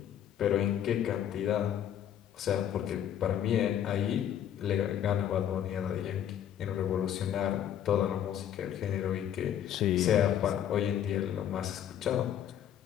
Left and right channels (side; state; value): right; quieter; 10.2 dB